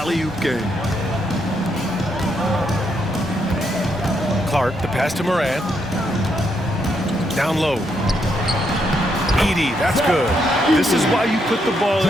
game. Clark, the pass to Morant. Down low. Edey, that's good. This is why you put the ball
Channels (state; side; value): normal; both; correlation 0.77